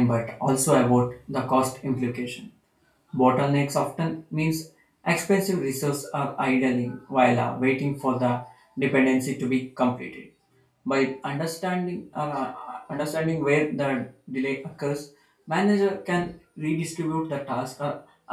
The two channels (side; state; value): both; identical; correlation 1.00